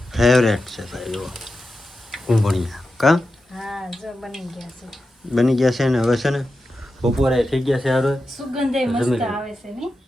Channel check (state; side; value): normal; both; correlation 0.90